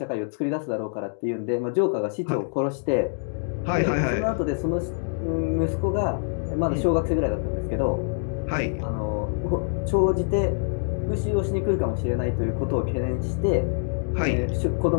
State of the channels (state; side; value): silent; right; 61 dB below the other